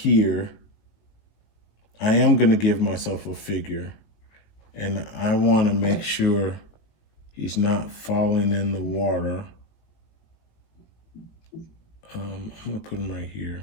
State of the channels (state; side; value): late; right; 18 ms